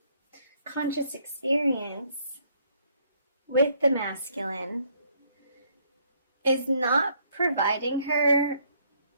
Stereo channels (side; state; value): both; inverted; correlation -0.67